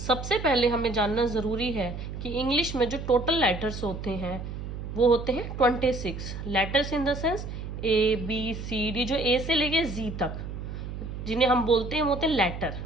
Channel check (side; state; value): right; noise; hum, 7 dB below the sound